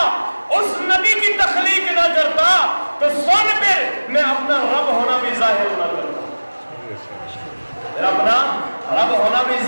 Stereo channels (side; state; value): both; inverted; correlation -1.00